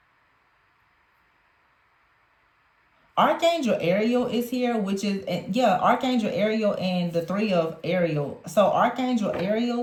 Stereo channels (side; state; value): both; identical; correlation 1.00